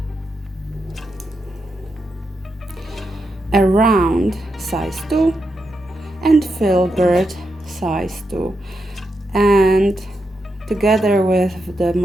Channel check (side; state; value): both; normal; correlation 0.85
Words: a round size 2, and filbert size 2. And together with the